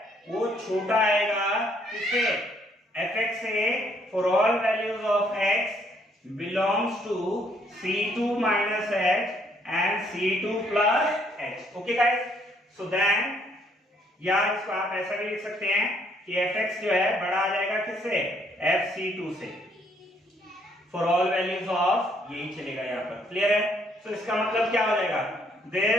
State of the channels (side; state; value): both; normal; correlation 0.67